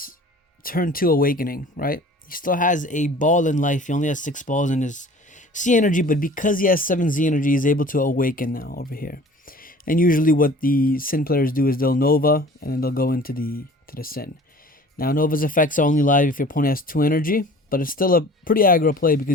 turn 2 awakening, right? He still has a ball in life. He only has 6 balls in his C energy, but because he has 7 Z energy, he's able to awaken now over here. And usually what the Syn players do is they'll Nova, and then they'll go into the Syn. Now, Nova's effects are only live if your opponent has 2 energy, but it's still a pretty aggro play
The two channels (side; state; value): both; normal; correlation 0.46